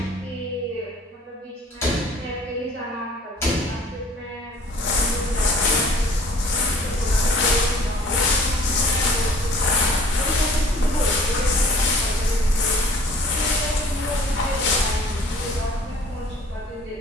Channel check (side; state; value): both; normal; correlation 0.52